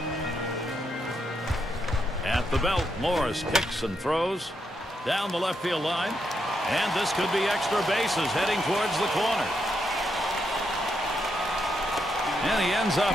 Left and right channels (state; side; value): normal; both; correlation 0.81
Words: At the belt, Morris kicks and throws down the left field line. And this could be extra bases heading towards the corner. And he ends up